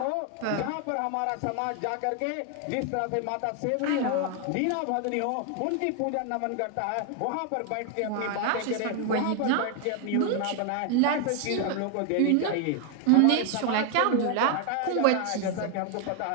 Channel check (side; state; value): both; different; correlation 0.01